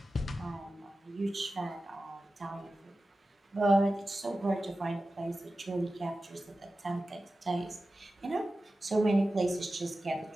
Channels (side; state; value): both; normal; correlation 0.94